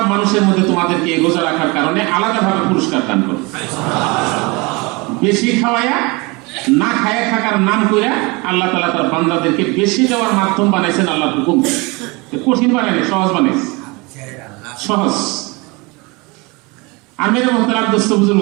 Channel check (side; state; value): left; quieter; 26.5 dB